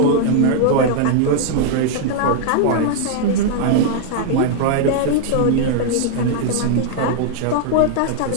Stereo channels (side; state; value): both; different; correlation -0.01